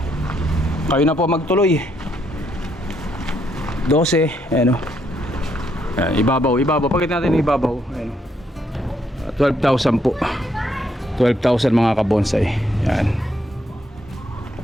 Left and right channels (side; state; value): both; normal; correlation 0.74